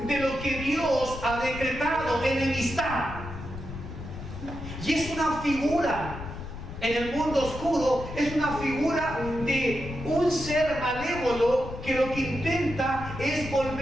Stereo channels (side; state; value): left; noise; rumble, 10 dB below the sound